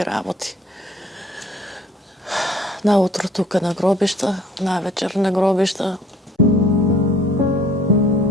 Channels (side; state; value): both; normal; correlation 0.55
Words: работи. Наутро тука на гробишта, навечер на гробишта.